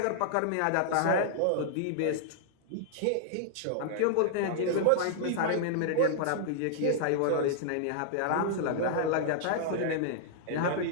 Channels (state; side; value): different; both; correlation -0.01